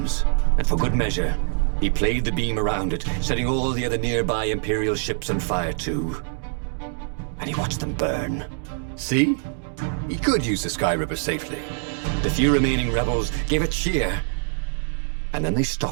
And for good measure, he played the beam around it, setting all the other nearby Imperial ships on fire too. And he watched them burn. See? He could use the Sky Ripper safely. The few remaining rebels gave a cheer. And then they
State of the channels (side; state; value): left; silent; digital silence